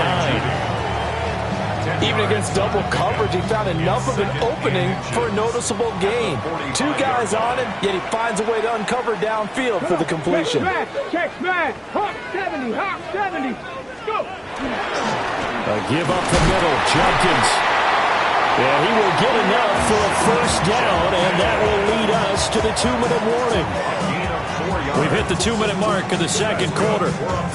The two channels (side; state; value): both; identical; correlation 1.00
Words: Even against double coverage, he found enough of an opening for a noticeable gain. 2 guys on him, yet he finds a way to uncover downfield for the completion. Check back. Hawk 70. Hawk 70. Go. A give up the middle. Jenkins. Yeah, he will get enough for a first down, and that will lead us to the 2-minute warning. We've hit the 2-minute mark of the 2nd quarter.